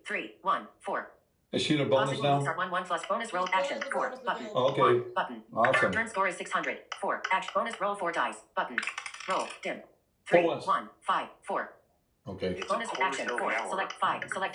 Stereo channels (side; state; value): both; identical; correlation 1.00